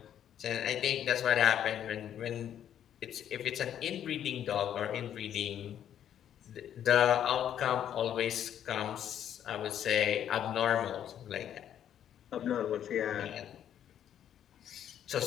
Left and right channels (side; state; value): right; quieter; 10.1 dB